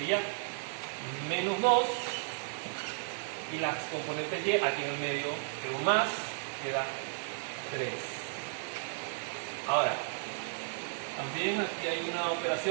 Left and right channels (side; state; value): left; silent; 55 dB below the other